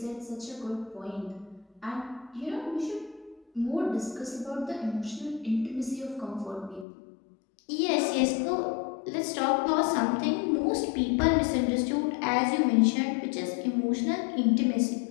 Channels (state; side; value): drops out; right; at 6.9 s